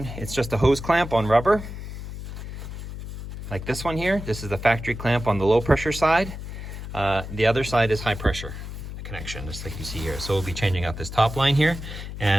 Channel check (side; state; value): left; noise; hum, 9 dB below the sound